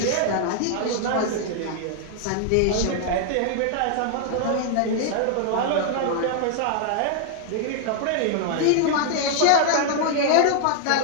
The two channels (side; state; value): both; different; correlation 0.00